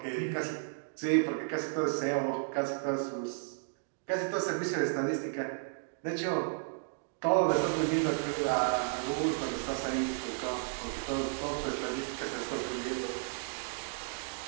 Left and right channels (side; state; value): left; silent; digital silence